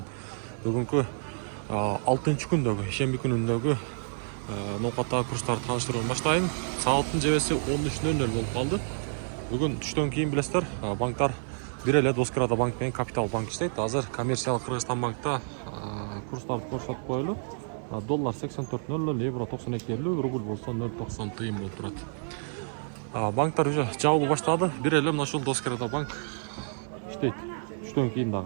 бүгүнкү 6-күндөгү, ишемби күнүндөгү ноокаттагы курстарды тааныштырууну баштайын. Сааттын жебеси 13:00 болуп калды. Бүгүн түштөн кийин билесиздер, банктар бир эле Доскрада банк менен Капитал банк иштейт. Азыр коммерциялык Кыргызстан банкта курстарды көрсөтүп коелу. Доллар 84.00, евро 92.50, рубль болсо 0.90 тыйын болуп турат. Банктар уже жабылып баштады. Бир эле мына ушул Доскрада банк иштейт. Түштөн кийин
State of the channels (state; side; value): silent; left; 55 dB below the other